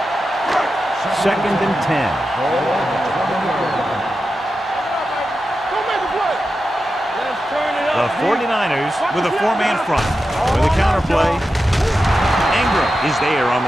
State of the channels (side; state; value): both; normal; correlation 0.91